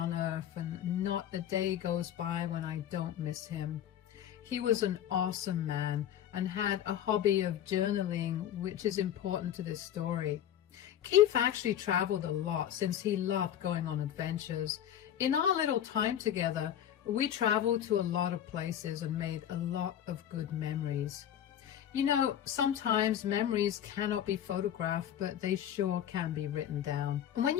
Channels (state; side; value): quieter; right; 10.5 dB